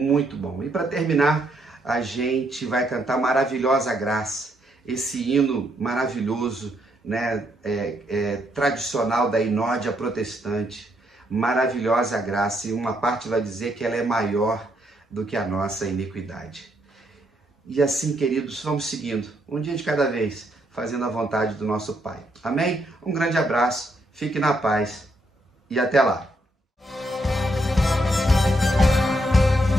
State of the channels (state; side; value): normal; both; correlation 0.75